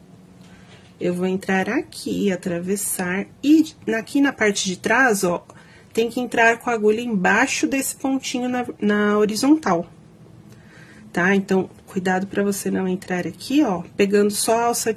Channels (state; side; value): identical; both; correlation 1.00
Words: Eu vou entrar aqui, atravessar, e aqui na parte de trás, ó, tem que entrar com a agulha embaixo desse pontinho na horizontal, tá? Então, cuidado pra você não entrar aqui, ó, pegando só a alça